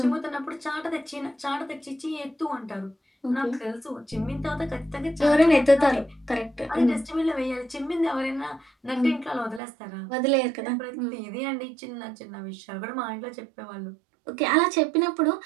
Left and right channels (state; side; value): drops out; left; at 9.6 s